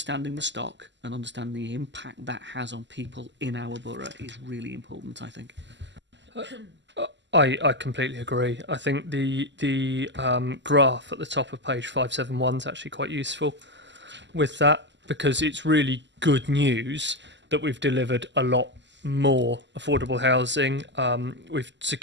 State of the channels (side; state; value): left; late; 0.53 ms